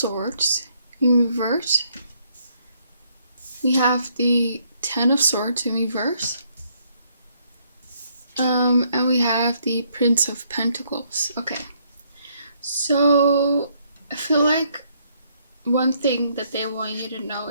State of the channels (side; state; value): both; inverted; correlation -0.69